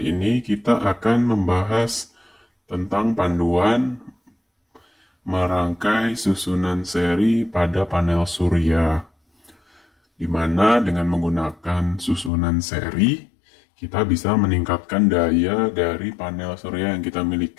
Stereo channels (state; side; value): drops out; right; at 12.3 s